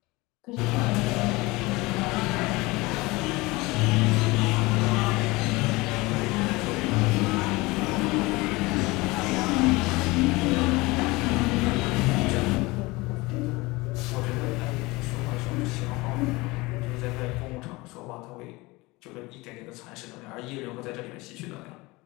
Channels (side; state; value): right; quieter; 22.7 dB